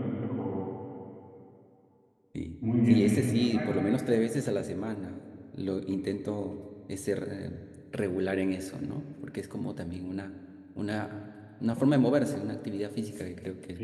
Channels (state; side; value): identical; both; correlation 1.00